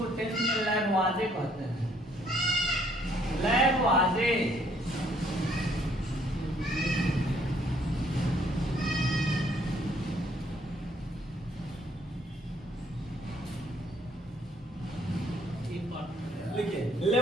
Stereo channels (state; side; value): normal; both; correlation 0.65